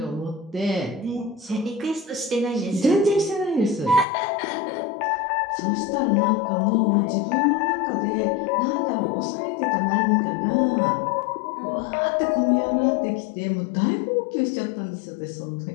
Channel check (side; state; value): right; drops out; at 4.0 s